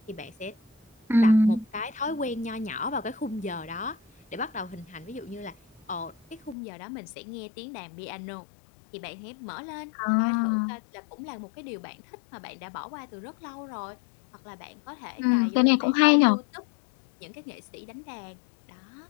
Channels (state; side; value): drops out; right; at 6.6 s